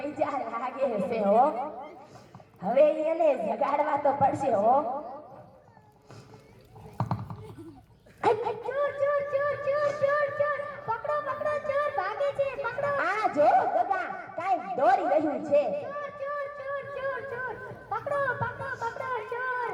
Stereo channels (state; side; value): identical; both; correlation 1.00